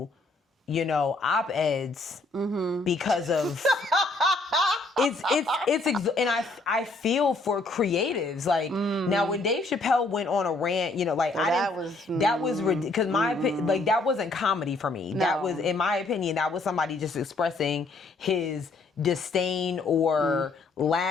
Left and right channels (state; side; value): quieter; right; 3.3 dB